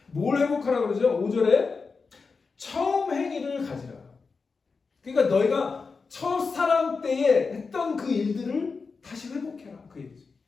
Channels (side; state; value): right; quieter; 4.7 dB